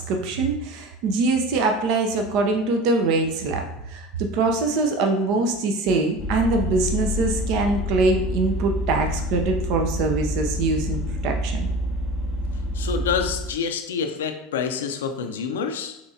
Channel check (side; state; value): both; normal; correlation 0.34